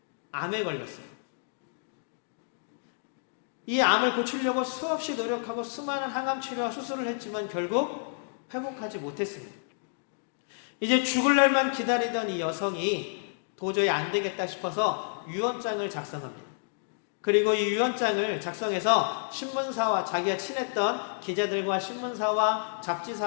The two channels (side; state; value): right; silent; digital silence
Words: 암에 걸렸어요. 이 암을 고치려고 수없이 노력하고 수많은 항암 치료와 수술을 했지만 결국 회복하지 못했습니다. 이제 죽을 날만 기다리던 이 여성이 도저히 안 되겠다 싶어서 유언장을 작성합니다. 그리고 이 유언장을 작성해서 신문사와 자기가 친했던 기자들과 신문사와